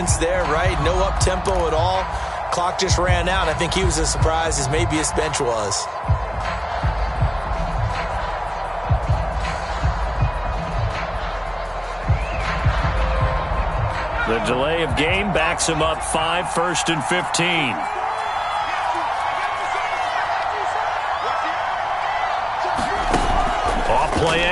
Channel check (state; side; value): identical; both; correlation 1.00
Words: there, right? No up-tempo at all. Clock just ran out. I think he was as surprised as maybe his bench was. The delay of game backs him up 5, 1st and 15. Play